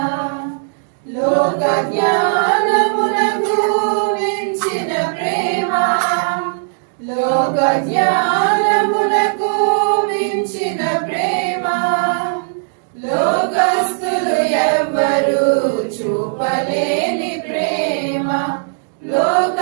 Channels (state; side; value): silent; left; digital silence